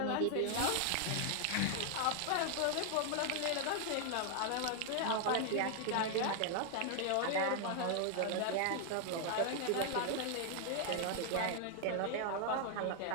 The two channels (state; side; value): different; both; correlation 0.00